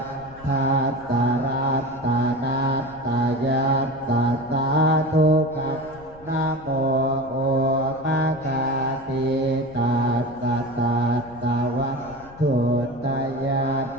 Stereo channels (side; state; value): left; noise; rumble, 21 dB below the sound